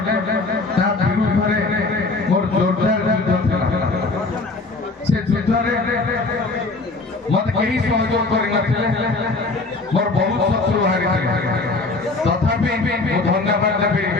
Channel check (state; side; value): quieter; right; 3.4 dB